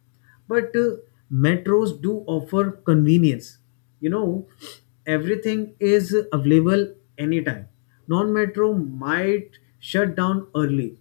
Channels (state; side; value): silent; right; digital silence